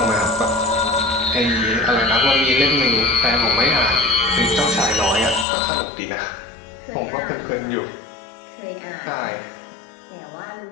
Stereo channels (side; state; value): right; drops out; at 5.5 s